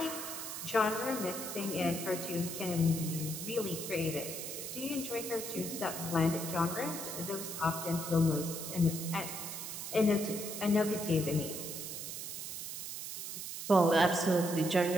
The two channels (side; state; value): right; noise; hiss, 6 dB below the sound